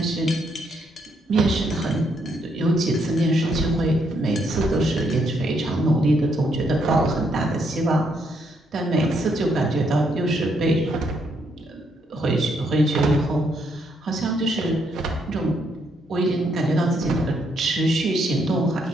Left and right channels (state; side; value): normal; both; correlation 0.74